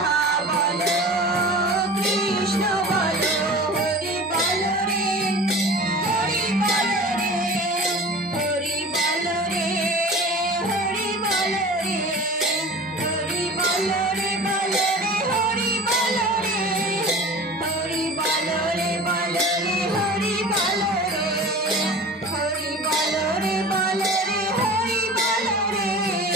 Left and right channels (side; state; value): both; normal; correlation 0.39